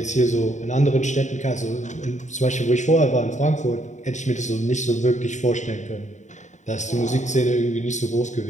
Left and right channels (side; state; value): right; late; 0.35 ms